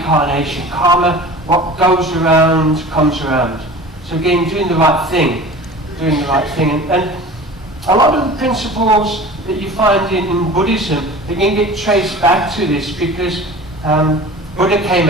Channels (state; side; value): normal; both; correlation 0.39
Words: karma. What goes around comes around. So again, doing the right thing, and a lot of the principles that you find in Buddhism, they can get traced back to this because Buddha came